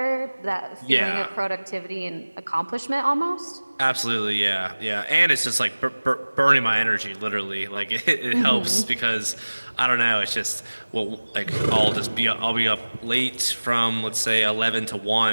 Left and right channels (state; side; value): inverted; both; correlation -1.00